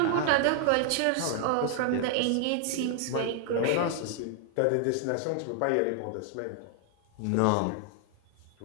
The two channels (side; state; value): both; different; correlation 0.00